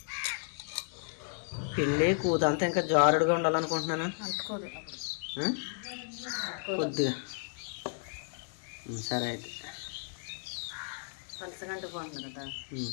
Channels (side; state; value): right; silent; 55 dB below the other